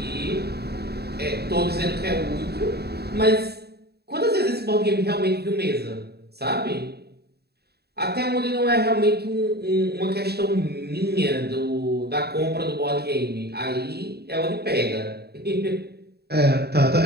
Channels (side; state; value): left; late; 0.47 ms